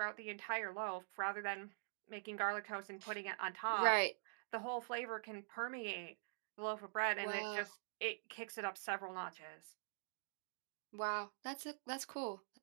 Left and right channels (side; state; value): left; silent; digital silence